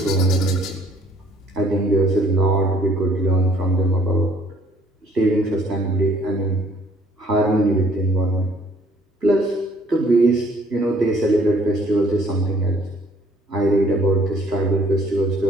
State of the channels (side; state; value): both; normal; correlation 0.60